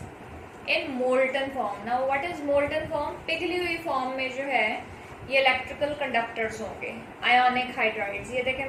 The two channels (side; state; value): both; identical; correlation 1.00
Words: in molten form. Now what is molten form? पिघली हुई फॉर्म में जो है ये इलेक्ट्रिकल कंडक्टर्स होंगे आयोनिक हाइड्राइड्स। ये देखें,